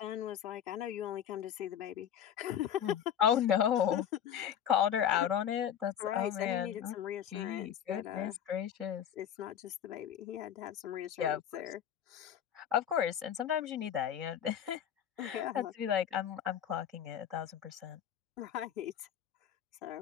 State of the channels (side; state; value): right; quieter; 9.4 dB